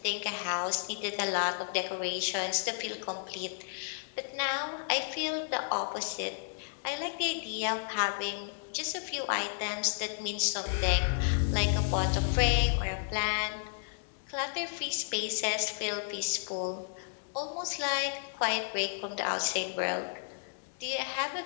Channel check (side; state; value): right; silent; 56 dB below the other